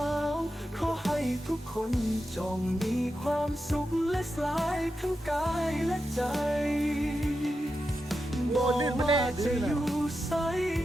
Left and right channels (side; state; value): both; normal; correlation 0.89